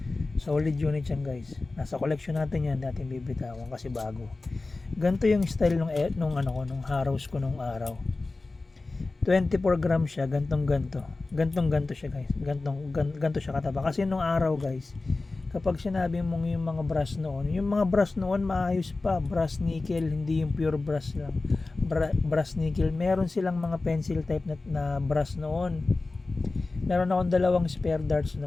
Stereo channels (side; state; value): right; quieter; 3.4 dB